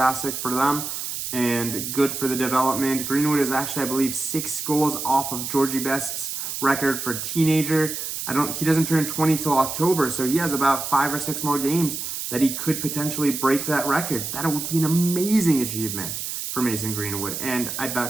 for them and good for the development. Greenwood is actually, I believe, 6 goals off of Georgie Best's record for teenager. He doesn't turn 20 till October, so he has about 5 or 6 more games that he could potentially break that record. That would be an amazing achievement for Mason Greenwood, and I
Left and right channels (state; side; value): noise; right; hiss, 5 dB below the sound